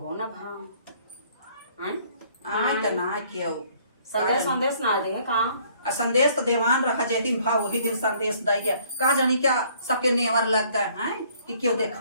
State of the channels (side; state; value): both; inverted; correlation -0.60